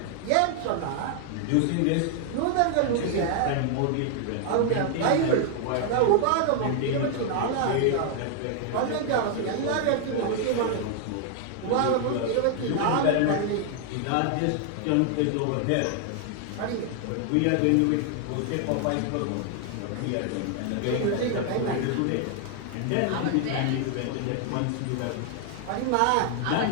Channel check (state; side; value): different; both; correlation 0.00